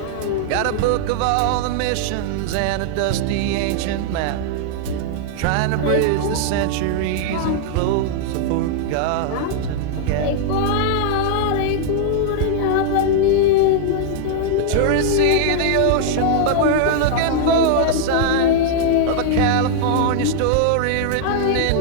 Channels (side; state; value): both; different; correlation -0.01